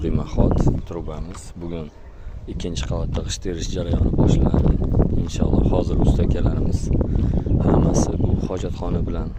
demaxot trubamiz. Bugun ikkinchi qavatda g'isht terish jarayoni boshlanadi. Inshaalloh hozir usta akalarimiz hammasi bu hojatxona bilan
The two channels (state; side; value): identical; both; correlation 1.00